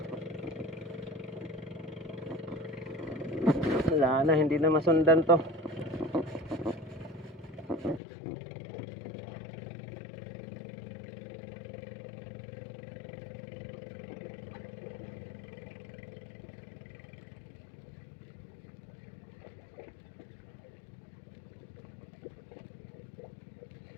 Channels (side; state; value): right; drops out; at 8.0 s